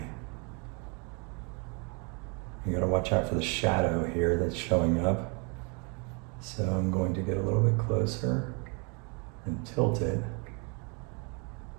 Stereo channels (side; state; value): left; quieter; 34.1 dB